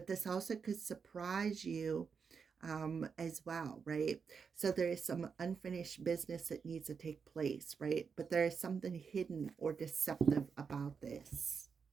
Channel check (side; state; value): left; quieter; 5.9 dB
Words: this also could surprise you as well, right? So there is some unfinished business that needs to take place, right? But there is something hidden or deceptive about this,